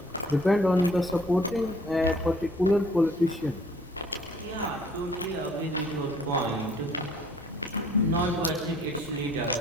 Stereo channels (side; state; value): both; normal; correlation 0.57